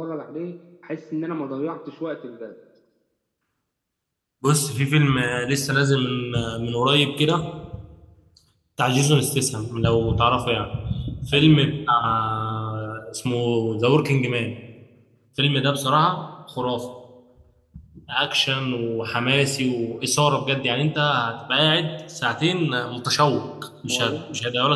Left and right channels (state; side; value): identical; both; correlation 1.00